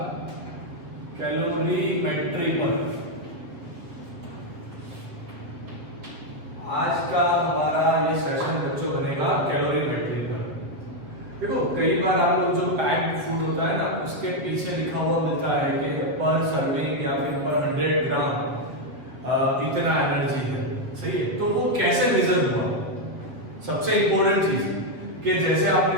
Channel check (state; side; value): late; left; 7.9 ms